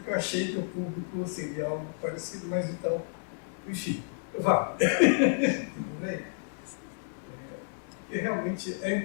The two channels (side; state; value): right; silent; digital silence